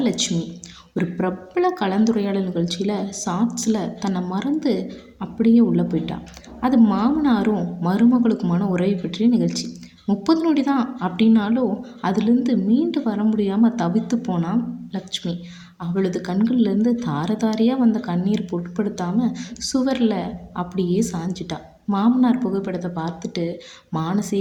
லட்சுமி. ஒரு பிரபல கலந்துரையாடல் நிகழ்ச்சியில் ஷார்ட்ஸில் தன்னை மறந்து அப்படியே உள்ளே போயிட்டா. அது மாமனாரும் மருமகளுக்குமான உறவை பற்றிய நிகழ்ச்சி. 30 நொடி தான் அப்படின்னாலும் அதுலேருந்து மீண்டு வர முடியாமல் தவித்து போனான் லட்சுமி. அவளது கண்கள்லேருந்து தார தாரையாக வந்த கண்ணீர் பொருட்படுத்தாமல் சுவரில் அப்படியே சாஞ்சிட்டா. மாமனார் புகைப்படத்தை பார்த்துட்டு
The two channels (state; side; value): identical; both; correlation 1.00